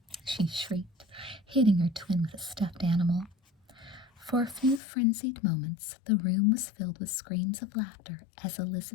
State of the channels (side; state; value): right; drops out; at 4.8 s